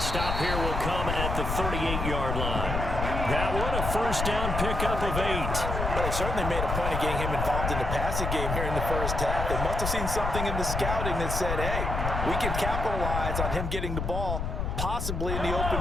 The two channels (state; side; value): noise; left; rumble, 2 dB below the sound